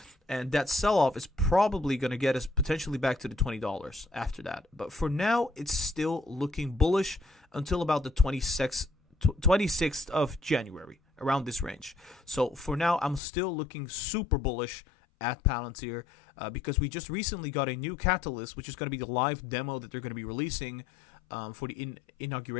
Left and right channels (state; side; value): drops out; right; at 13.2 s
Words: And that sell-off is probably going to get us potentially back to the $20 after that. But for now, it's still looking bullish until about the 26th of January, around this range. So for now, I'm still looking super bullish at Palantir because we just recently got a new catalyst, which is going to be the live demo that they're going to be releasing for the